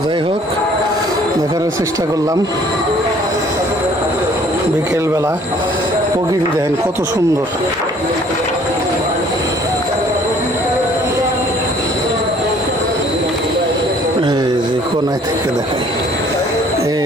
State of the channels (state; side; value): normal; both; correlation 0.57